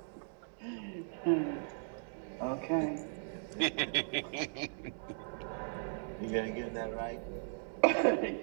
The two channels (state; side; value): silent; left; digital silence